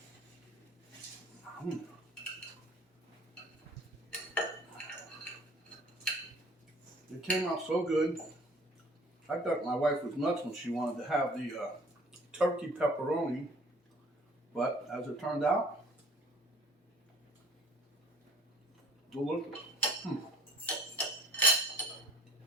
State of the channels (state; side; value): normal; both; correlation 0.51